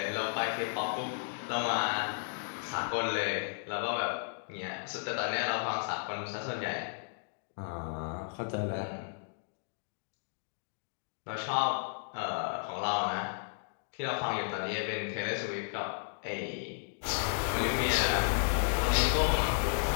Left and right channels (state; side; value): silent; right; digital silence